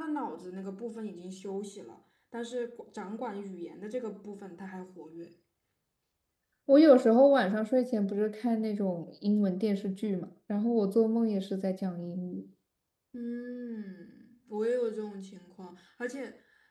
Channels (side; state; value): both; identical; correlation 1.00